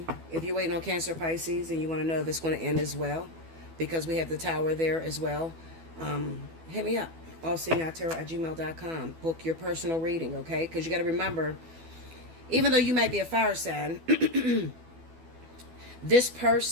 If you're waiting on Cancer, Pisces, and you want to know if it's going to end as well, because we have the Tower there as well, hit me up, allseeingeyetarot@gmail.com. Book your personal reading, okay? Because you got to remember, even though you might be a fire sign, this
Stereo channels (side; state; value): left; late; 12 ms